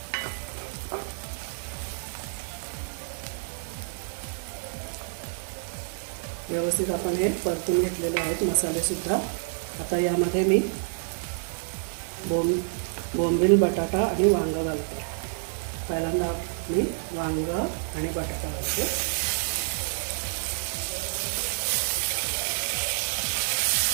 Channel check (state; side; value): silent; left; digital silence